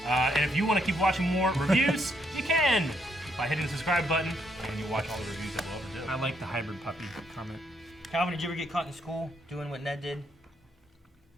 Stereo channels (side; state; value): both; normal; correlation 0.74